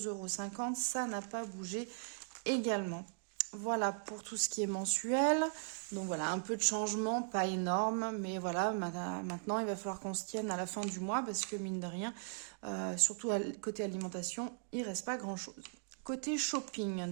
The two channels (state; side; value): silent; left; digital silence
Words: €. Ça n'a pas bougé également. Voilà pour tout ce qui est mensuel. Donc voilà, un peu de changement, pas énorme. Mais voilà, maintenant, il va falloir qu'on se tienne à la fin du mois parce que mine de rien, surtout côté alimentation, il ne reste pas grand-chose. Côté shopping,